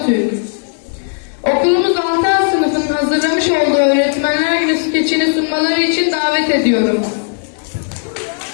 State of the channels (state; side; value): silent; right; 69 dB below the other